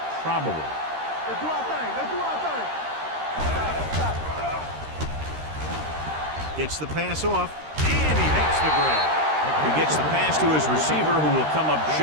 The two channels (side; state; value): left; late; 13 ms